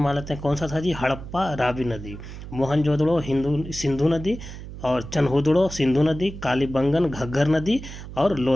लेते हैं। कौन सा था जी? हड़प्पा रावी नदी, मोहनजोदड़ो सिंधु नदी, और चनहुदड़ो सिंधु नदी, कालीबंगन घग्घर नदी, और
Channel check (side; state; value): right; noise; hum, 12 dB below the sound